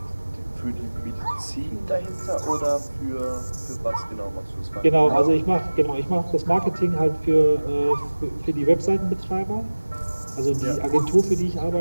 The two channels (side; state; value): both; inverted; correlation -1.00